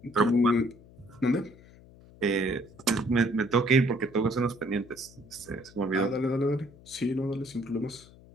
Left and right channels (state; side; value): noise; left; hum, 23 dB below the sound